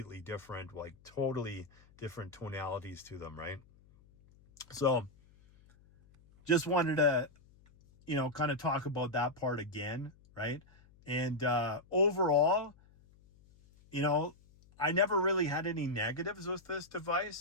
different, like totally different tonalities to them, right? So just wanted to, kind of talk about that part again, right? And overall, I never really had any negatives with this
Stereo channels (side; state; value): left; noise; hum, 27 dB below the sound